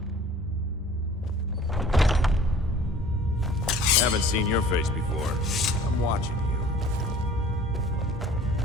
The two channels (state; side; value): normal; both; correlation 0.49